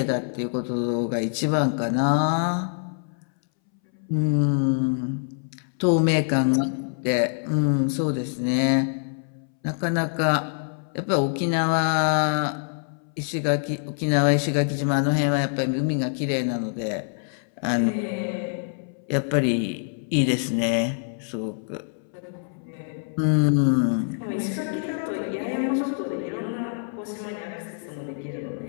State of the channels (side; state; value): right; silent; 62 dB below the other